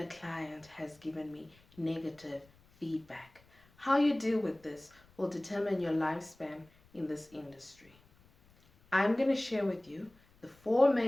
client has given me negative feedback. How you deal with this will determine your lifespan in this industry. I'm going to share with you the 4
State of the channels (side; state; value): left; noise; rumble, 29 dB below the sound